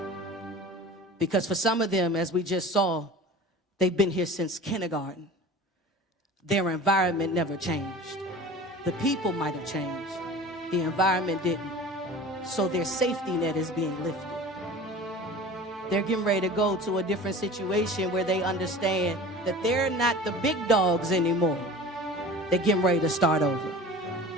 Because for some of them, as we just saw, they've been here since kindergarten. Their environment never changed. The people might have changed. The environment didn't. So their safety net is being lifted. They're getting ready to go to a different situation where they understand that they're not the big dogs anymore. They're getting ready to start over.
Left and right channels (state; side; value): normal; both; correlation 0.39